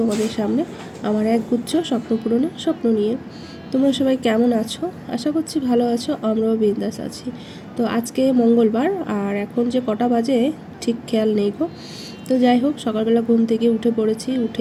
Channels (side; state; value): both; identical; correlation 1.00